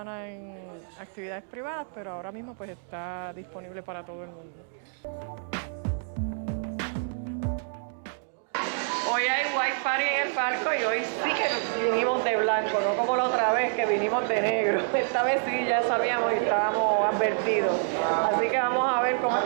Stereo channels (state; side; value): silent; left; 60 dB below the other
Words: en actividades privadas, pero ahora mismo pues está disponible para todo el mundo. Hoy hay White Party en el barco y hoy sí que vinimos de blanco, no como la otra vez que vinimos de negro. Esta vez sí ya sabíamos y estábamos advertidos. Así que vamos a ver cómo es